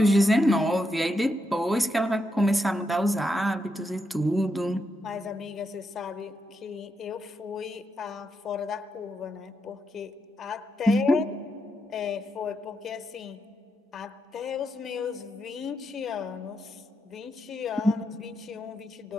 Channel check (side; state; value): both; normal; correlation 0.83